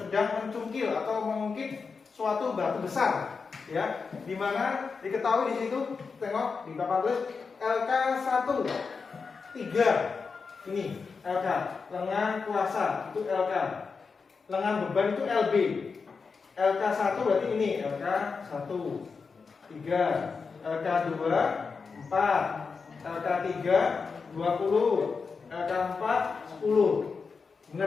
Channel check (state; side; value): quieter; right; 5.0 dB